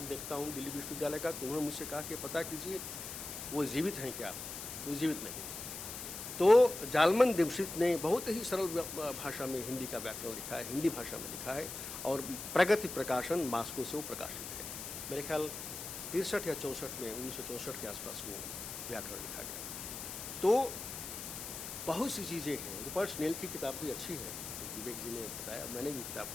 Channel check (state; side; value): noise; left; hiss, 8 dB below the sound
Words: देखता हूँ दिल्ली विश्वविद्यालय का, तो उन्होंने मुझसे कहा कि पता कीजिए वो जीवित हैं क्या। वो जीवित नहीं। तो जालमन दिमशित्स ने बहुत ही सरल भाषा में हिंदी का व्याकरण लिखा है, हिंदी भाषा में लिखा है, और प्रगति प्रकाशन मास्को से वो प्रकाशित है। मेरे ख्याल 63 या 64 में, 1964 के आसपास वो व्याकरण लिखा गया। तो बहुत सी चीज़ें हैं। रूपर्ट स्नेल की किताब भी अच्छी है, विवेक जी ने बताया, मैंने भी किताब